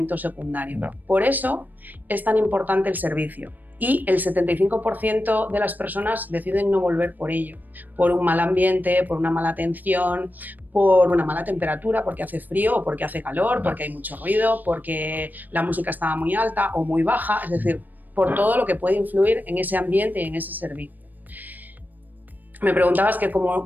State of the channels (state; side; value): late; left; 0.086 ms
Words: secundario. Por eso es tan importante el servicio. y el 75% de las personas deciden no volver por ello, por un mal ambiente, por una mala atención, por una mala temperatura, porque hace frío o porque hace calor, porque hay mucho ruido, porque la música estaba muy alta o muy baja, es decir, por todo lo que puede influir en ese ambiente y en ese servicio. Me preguntabas que